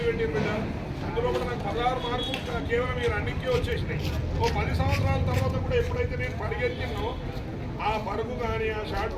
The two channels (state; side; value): identical; both; correlation 1.00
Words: పెట్టారు బిడ్డ. అందులో కూడా నాకు 16 మార్కులు కేవలం ఈ రన్నింగ్కే వచ్చేసినాయి. ఓ 10 సంవత్సరాల తర్వాత కూడా ఎప్పుడైతే నేను పరిగెత్తినో ఆ పరుగు కానీ ఆ షార్ట్